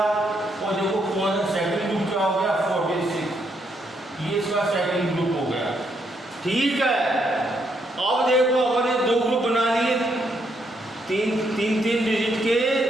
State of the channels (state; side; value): normal; both; correlation 0.75